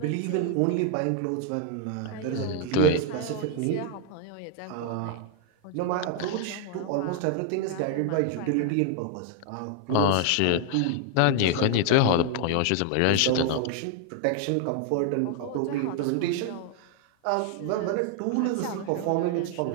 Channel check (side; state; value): both; different; correlation 0.00